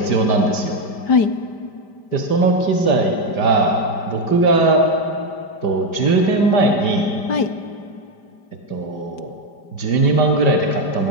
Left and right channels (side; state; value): right; late; 5.1 ms